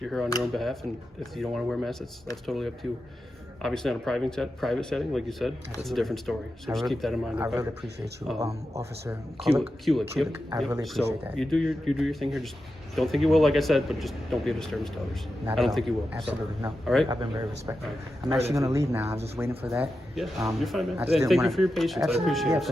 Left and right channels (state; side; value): normal; both; correlation 0.90